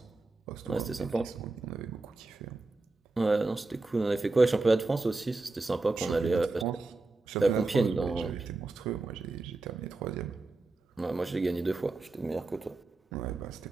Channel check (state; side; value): quieter; left; 3.3 dB